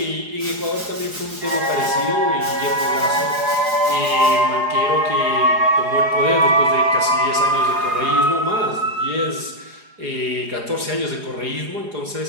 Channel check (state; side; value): late; left; 4.8 ms